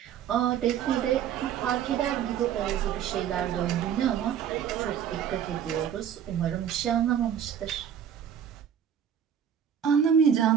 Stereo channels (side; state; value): left; quieter; 8.8 dB